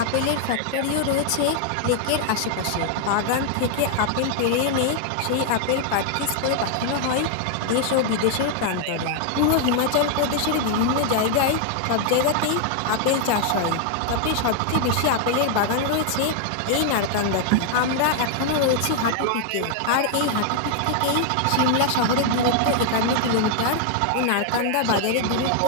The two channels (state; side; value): different; both; correlation 0.00